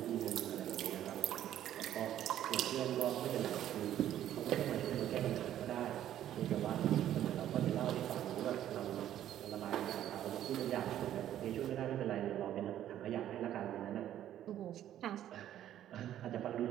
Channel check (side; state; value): left; quieter; 11.6 dB